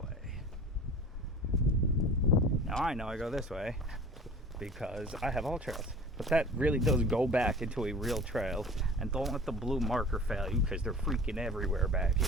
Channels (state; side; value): normal; both; correlation 0.42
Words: way? Now I know I go this way because I have all trails. But that really does go back into a real trail. And don't let the blue marker fail you because they're freaking everywhere back